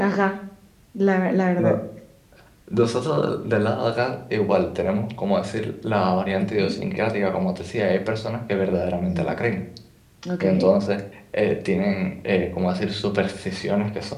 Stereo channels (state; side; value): identical; both; correlation 1.00